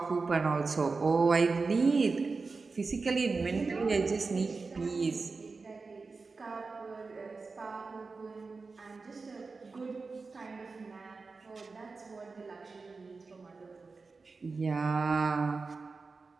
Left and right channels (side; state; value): left; quieter; 4.2 dB